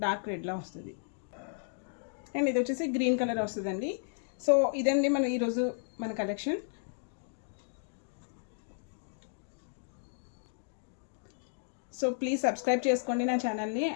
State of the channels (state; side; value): silent; right; digital silence